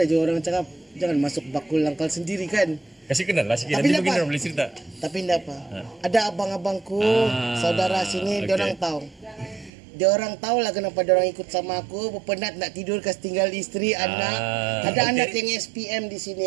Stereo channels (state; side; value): drops out; left; at 9.7 s